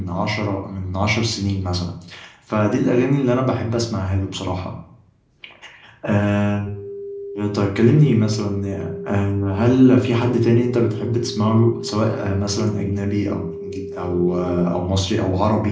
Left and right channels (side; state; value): both; identical; correlation 1.00